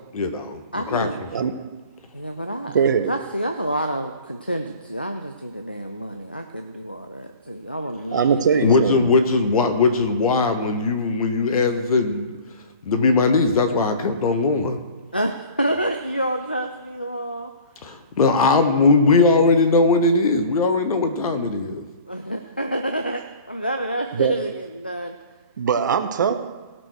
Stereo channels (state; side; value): inverted; both; correlation -0.43